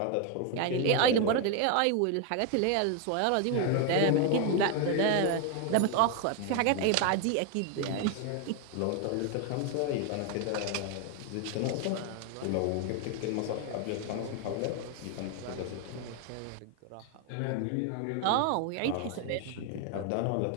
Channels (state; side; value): different; both; correlation 0.01